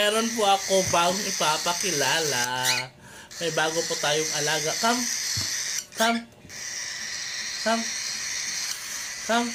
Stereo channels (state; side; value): identical; both; correlation 1.00